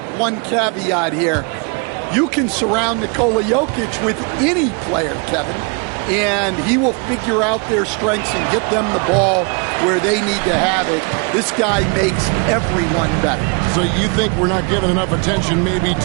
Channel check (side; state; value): left; quieter; 34.5 dB